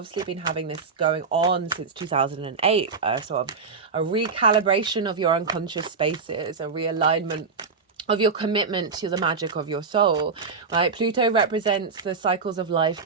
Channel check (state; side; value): quieter; left; 5.0 dB